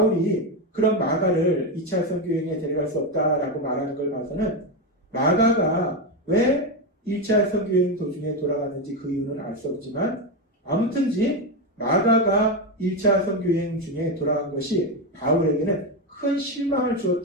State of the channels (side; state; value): both; normal; correlation 0.11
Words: 그런 마가를 2차 선교여행에 데려갈 수 없다라고 말하는 걸 봐서는 마가가 왜 1차 선교여행 도중에 돌아갔는지 그 이유는 알 수 없지만 아무튼지 마가가 1차 선교여행 중에 돌아간 것이 바울에게는 큰 실망을